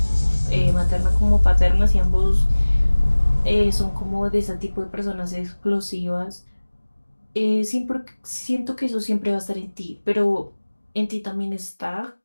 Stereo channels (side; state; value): both; inverted; correlation -1.00